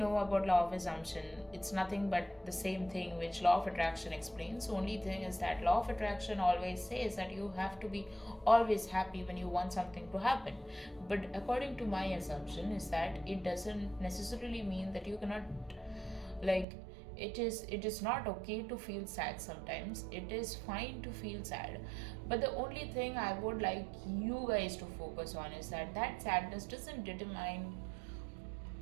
about law of assumption, it's nothing but the same thing which law of attraction explains. Only thing is that law of attraction always says that you have to be always happy when you want something to happen. But according to my assumption, is that it doesn't necessarily mean that you cannot, like, it is not okay to feel sad sometimes. It is fine to feel sad, but the only thing I would like you guys to focus on is that that sadness doesn't determine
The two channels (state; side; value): drops out; left; at 16.7 s